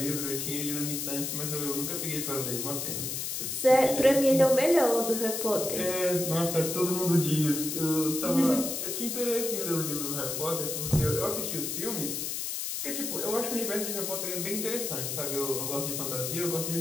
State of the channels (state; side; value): noise; left; hiss, 3 dB below the sound